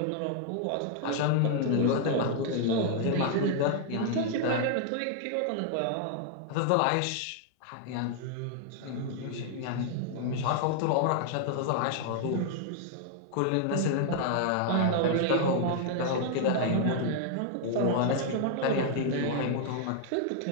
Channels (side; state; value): both; different; correlation 0.00